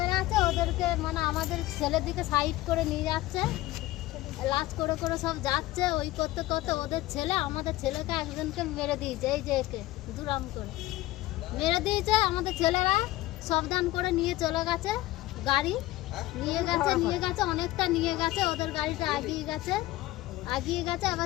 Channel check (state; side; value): quieter; right; 17.2 dB